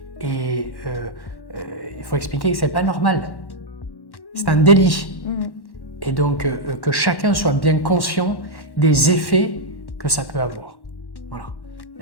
Et il faut expliquer que ce n'est pas normal. C'est un délit. Et donc que chacun soit bien conscient des effets que ça peut avoir. Voilà.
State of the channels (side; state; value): right; late; 1.1 ms